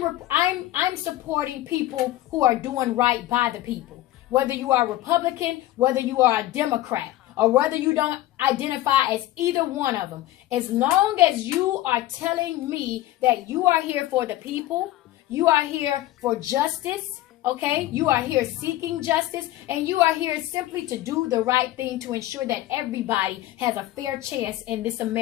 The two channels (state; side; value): quieter; right; 15.3 dB